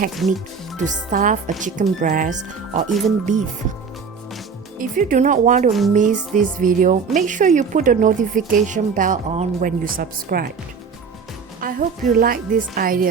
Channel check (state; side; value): quieter; left; 5.7 dB